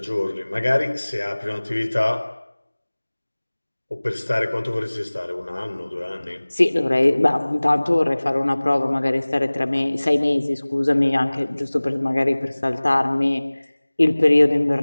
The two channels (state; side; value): inverted; both; correlation -1.00